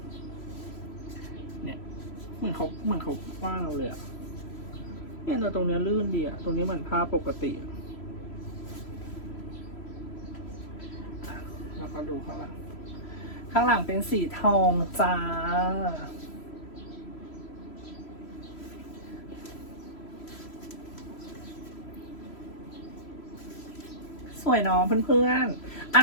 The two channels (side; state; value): right; late; 3.0 ms